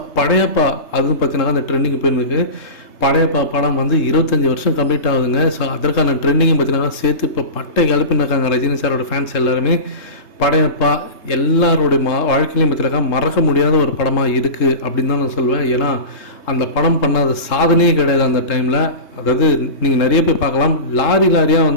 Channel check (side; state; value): right; late; 3.2 ms